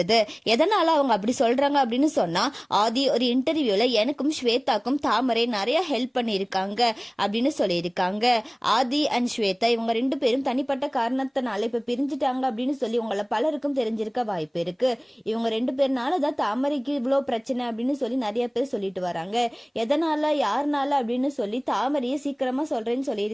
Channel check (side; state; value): both; identical; correlation 1.00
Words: எதனால அவங்க அப்படி சொல்றாங்க அப்படின்னு சொன்னா, ஆதி ஒரு இன்டர்வியூல எனக்கும் ஸ்வேதாக்கும் தாமரை நிறைய ஹெல்ப் பண்ணியிருக்காங்க அப்படின்னு சொல்லியிருக்காங்க. ஆதி அண்ட் ஸ்வேதா இவங்க 2 பேரும் தனிப்பட்ட காரணத்தினால இப்ப பிரிஞ்சுட்டாங்க அப்படின்னு சொல்லி உங்களை பலருக்கும் தெரிஞ்சிருக்க வாய்ப்பு இருக்கு. இவங்க 2 பேர்னாலதான் தாமரைக்கு இவ்வளோ பிரச்சனை அப்படின்னு சொல்லி நிறைய பேர் சொல்லிட்டு வராங்க. எதனால யாருனால அப்படின்னு சொல்லி தாமரையை சீக்கிரமா சொல்றேன்னு